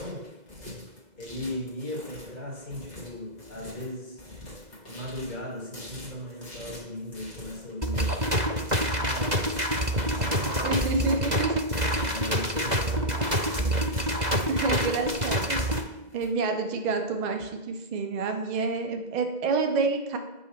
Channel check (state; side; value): late; left; 2.0 ms